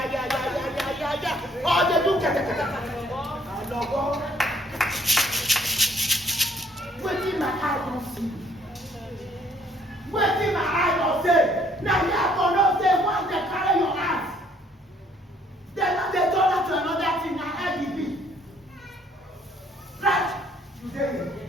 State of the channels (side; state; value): both; normal; correlation 0.63